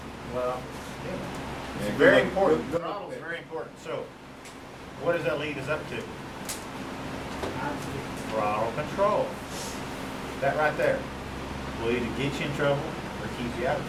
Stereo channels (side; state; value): both; identical; correlation 1.00